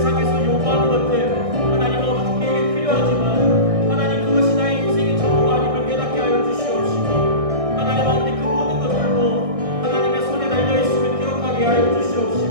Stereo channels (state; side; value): late; left; 1.6 ms